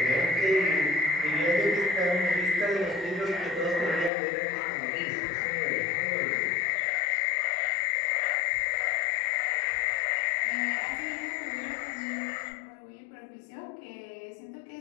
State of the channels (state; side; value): drops out; right; at 4.1 s